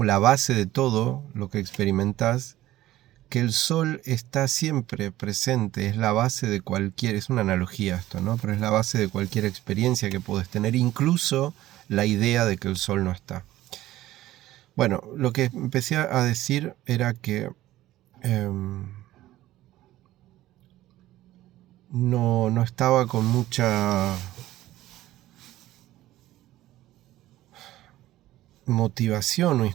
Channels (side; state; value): left; quieter; 15.3 dB